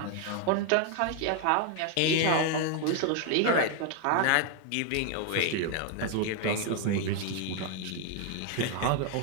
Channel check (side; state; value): both; different; correlation 0.01